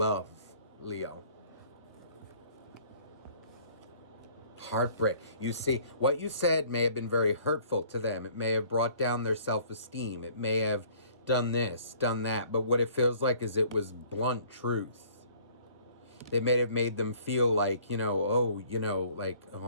Leo. Heartbreak. You see, what you said may have been very hurtful to them. It may have brought down their self-esteem. It may have done this, done that. But what it feels like is it was blunt truth. It may have made them feel like, like, oh,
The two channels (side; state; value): both; inverted; correlation -0.55